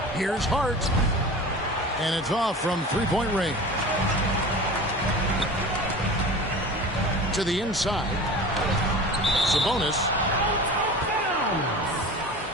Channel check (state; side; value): normal; both; correlation 0.36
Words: Here's Hart. And it's off from three-point range. To the inside. Sabonis.